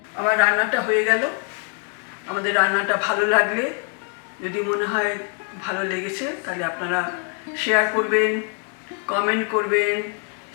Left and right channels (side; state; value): right; quieter; 39.7 dB